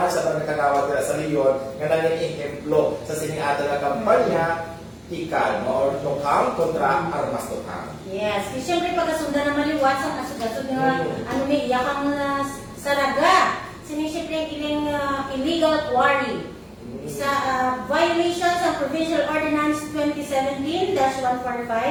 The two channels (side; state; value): both; identical; correlation 1.00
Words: sa pagkakawad nila sa Leon, nga nanging-implo sa sining ato nga kampanya, Ikal, no? Or Tukang kontra Armas Tukang. Yes, kasi syempre pagkasundan na maliwat sa kasugod nga, ano ni iya kang saraga, sinisipre ilang illegal quarry. Sa violations of Provincial Ordinance